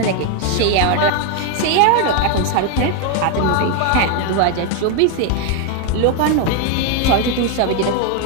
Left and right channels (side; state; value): both; different; correlation 0.01